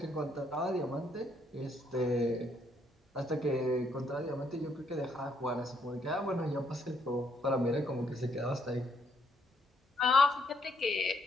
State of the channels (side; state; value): both; normal; correlation 0.72